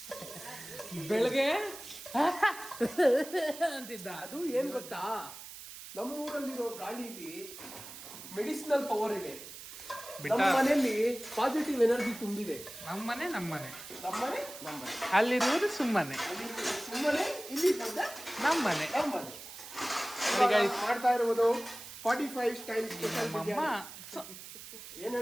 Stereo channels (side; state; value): right; noise; hiss, 13 dB below the sound